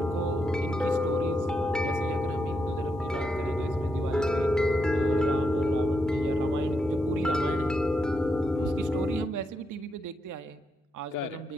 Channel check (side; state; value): both; normal; correlation 0.82